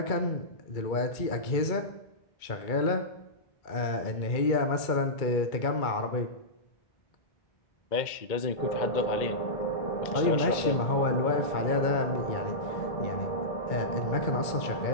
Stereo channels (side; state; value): right; late; 2.2 ms